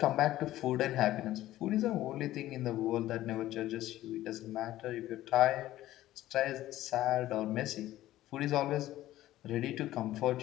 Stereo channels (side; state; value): right; quieter; 14.8 dB